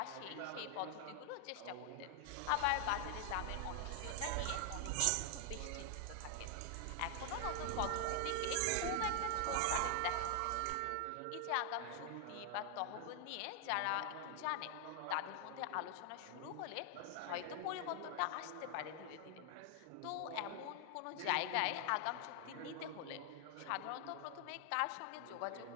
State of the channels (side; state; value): both; different; correlation 0.00